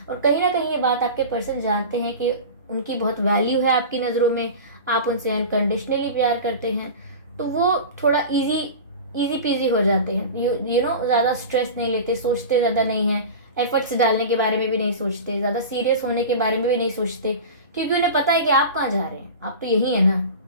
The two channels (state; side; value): inverted; both; correlation -0.31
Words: और कहीं ना कहीं ये बात आपके पर्सन जानते हैं कि उनकी बहुत वैल्यू है आपकी नज़रों में, आप उनसे अनकंडीशनली प्यार करते हैं। तो वो थोड़ा इजी पीजी हो जाते हैं, ज़्यादा स्ट्रेस नहीं लेते, सोचते ज़्यादा नहीं हैं, एफर्ट्स डालने के बारे में भी नहीं सोचते, ज़्यादा सीरियस होने के बारे में भी नहीं सोचते, क्योंकि उन्हें पता है कि आप कहाँ जा रहे हैं। आप तो यही है ना।